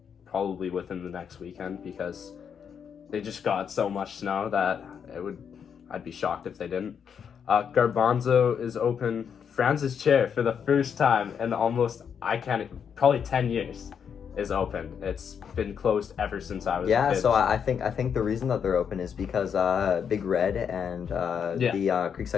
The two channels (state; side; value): quieter; right; 7.4 dB